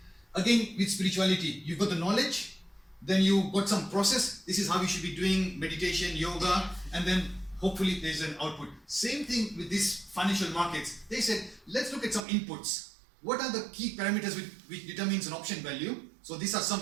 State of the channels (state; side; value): drops out; left; at 12.2 s